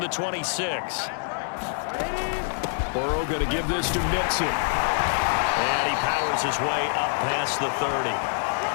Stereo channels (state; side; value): silent; right; digital silence